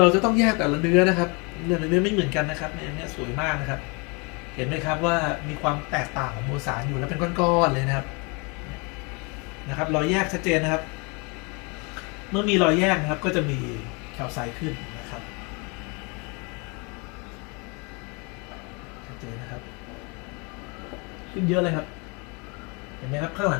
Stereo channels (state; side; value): quieter; right; 30.9 dB